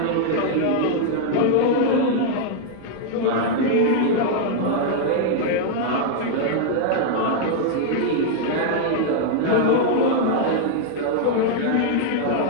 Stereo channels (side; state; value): both; different; correlation 0.00